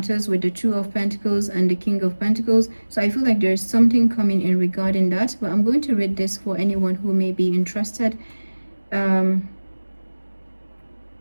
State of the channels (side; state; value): both; inverted; correlation -1.00